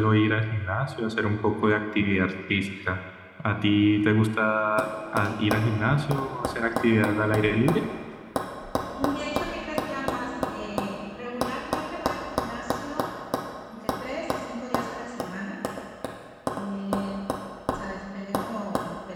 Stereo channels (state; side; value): identical; both; correlation 1.00